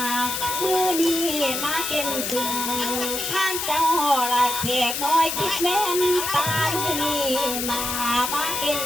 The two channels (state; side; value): noise; left; hiss, 2 dB below the sound